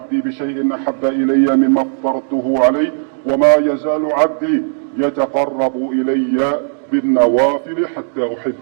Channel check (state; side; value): silent; left; digital silence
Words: بشيء أحب إلي مما افترضته عليه وما يزال عبدي يتقرب إلي بالنوافل حتى